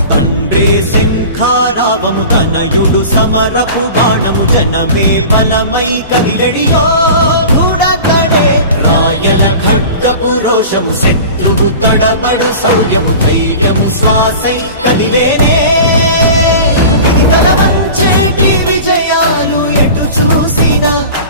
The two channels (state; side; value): inverted; both; correlation -0.37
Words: శంఖారావము తనయుడు సమరపు బాణము జనమే బలమై కదిలెడియో దూడతాడే రాయల ఖడ్గపు రోషము శత్రువు తడబడు శౌర్యము ధైర్యము శ్వాసై కదిలేనే ఇది కలవ